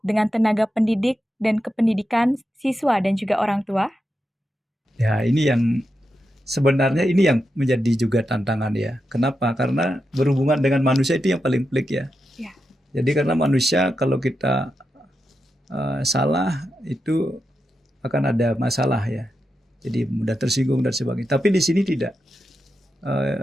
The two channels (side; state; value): both; normal; correlation 0.87